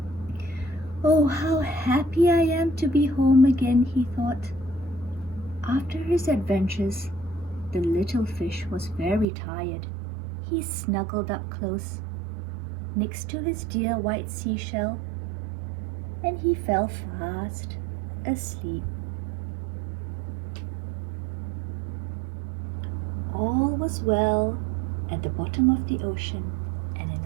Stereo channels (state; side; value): drops out; left; at 9.2 s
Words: "Oh, how happy I am to be home again," he thought. After his adventures, the little fish was very tired. He snuggled up close, next to his dear white seashell, and he fell fast asleep. All was well at the bottom of the ocean, and in